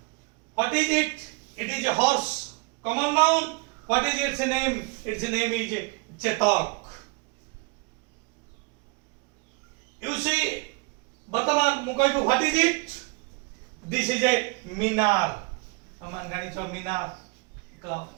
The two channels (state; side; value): quieter; left; 27.9 dB